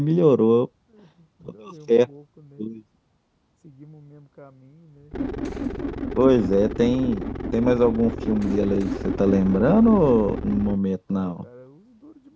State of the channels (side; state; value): both; identical; correlation 1.00